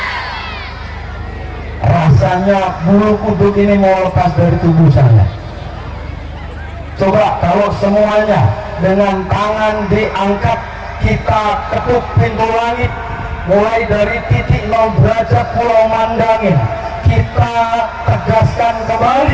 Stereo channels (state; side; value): identical; both; correlation 1.00